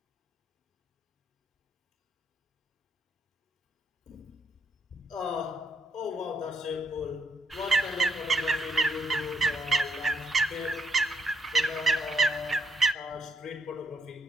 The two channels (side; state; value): both; normal; correlation 0.73